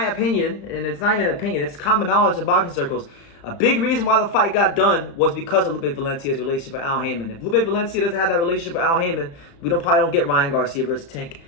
opinion, and it's not even an opinion, it's common knowledge in boxing circles, a big reason why the fight got done was because of Lupe Valencia's relationship with Al Heyman. If Lupe Valencia doesn't have that relationship with Al Heyman, we probably don't get Ryan Garcia versus Tank,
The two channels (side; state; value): right; late; 35 ms